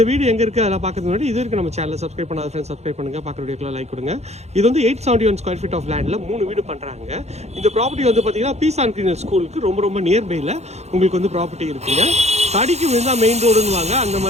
வீடு எங்கே இருக்குது அதெல்லாம் பார்க்கறதுக்கு முன்னாடி இது வரைக்கும் நம்ம சேனலை சப்ஸ்கிரைப் பண்ணாத ஃப்ரெண்ட்ஸ் சப்ஸ்கிரைப் பண்ணுங்கள், பார்க்குற வீடியோக்கெல்லாம் லைக் கொடுங்க. இது வந்து 871 ஸ்கொயர் ஃபீட் ஆஃப் லேண்டில் 3 வீடு பண்ணுறாங்க. இந்த ப்ராப்பர்ட்டி வந்து பார்த்தீங்கன்னா பீஸ் அண்ட் கிளீனர் ஸ்கூலுக்கு ரொம்ப நியர்பையில் உங்களுக்கு வந்து ப்ராப்பர்ட்டி இருக்குங்க. தடிக்கு விழுந்தால் மெயின் ரோடுன்னு அந்த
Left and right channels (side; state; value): left; late; 0.31 ms